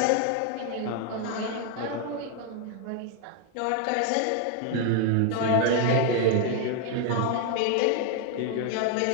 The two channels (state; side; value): different; both; correlation 0.01